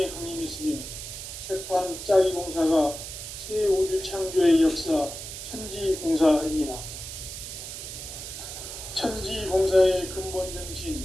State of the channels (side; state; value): right; noise; hiss, 9 dB below the sound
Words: 강림했으며 새판짜기 공사가 새 우주 창조의 역사 천지공사입니다. 천지공사의 근본 정신